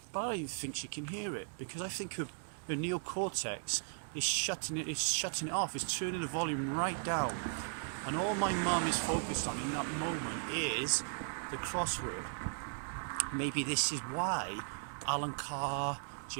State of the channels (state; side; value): silent; left; digital silence